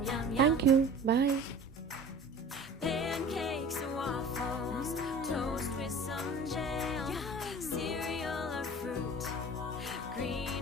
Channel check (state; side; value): normal; both; correlation 0.41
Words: Thank you, bye. Pancakes and waffles, toast with some jam, cereal or fruit,